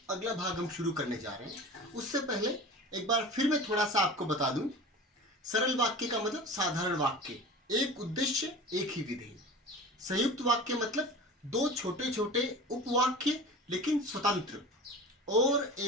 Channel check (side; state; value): both; normal; correlation 0.36